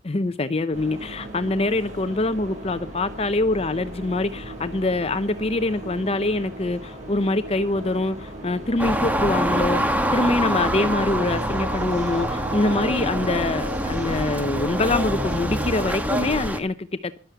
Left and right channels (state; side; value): normal; both; correlation 0.57